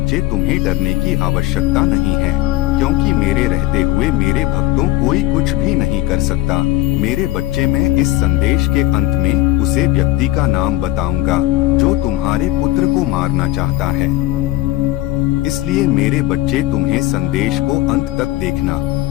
तुम्हें डरने की आवश्यकता नहीं है, क्योंकि मेरे रहते हुए मेरे भक्तों कोई कुछ भी नहीं कर सकता। मेरे बच्चे, मैं इस संदेश के अंत में उसे व्यक्ति का नाम बताऊंगा जो तुम्हारे पुत्र को मारना चाहता है। इसलिए मेरे बच्चे, तुम्हें संदेश को अंत तक देखना,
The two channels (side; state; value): right; quieter; 16.1 dB